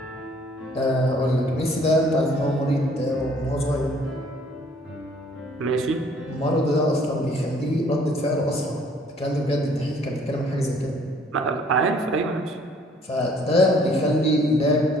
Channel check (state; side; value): normal; both; correlation 0.59